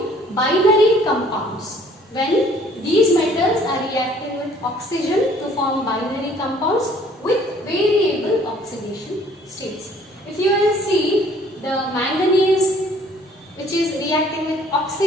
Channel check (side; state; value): both; normal; correlation 0.57